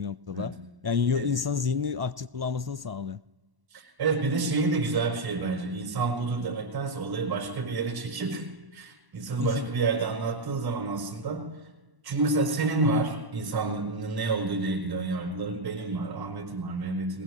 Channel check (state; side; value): late; left; 1.1 ms